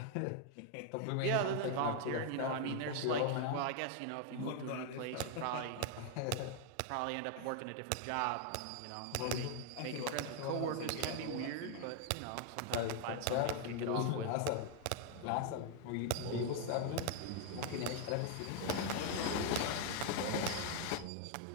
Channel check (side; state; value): both; different; correlation 0.00